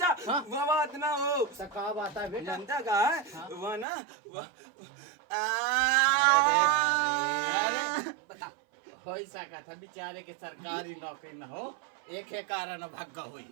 हाँ? वो बात ना हो। तो का बात है बेटा? जनता का है हाँ? वो ना वो अरे बता। हो सका था बेचारे के सरकारी नौकरी न हो, एक है कारण भाग्य हुई।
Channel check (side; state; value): left; drops out; at 3.9 s